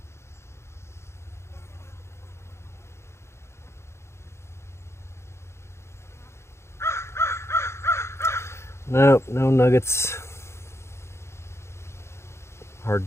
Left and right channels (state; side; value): late; right; 0.13 ms